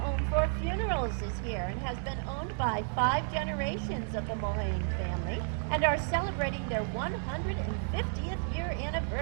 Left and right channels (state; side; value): silent; left; 56 dB below the other